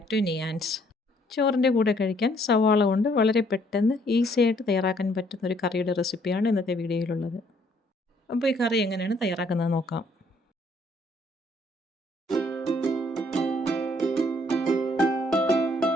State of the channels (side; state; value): both; normal; correlation 0.65